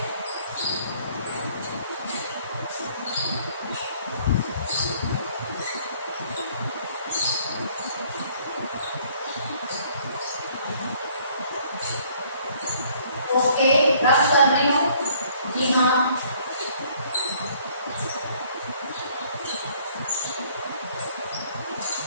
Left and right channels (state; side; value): inverted; both; correlation -0.60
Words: ओके, रब कर रही हूँ। जी हाँ,